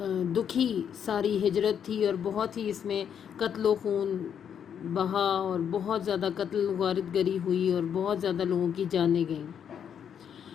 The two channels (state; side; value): quieter; right; 8.3 dB